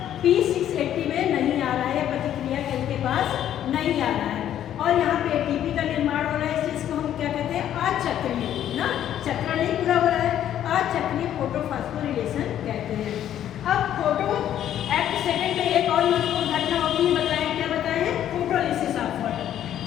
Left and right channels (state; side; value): quieter; right; 10.9 dB